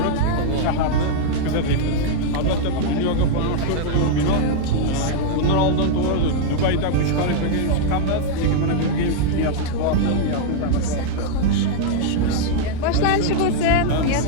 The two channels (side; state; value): both; different; correlation -0.01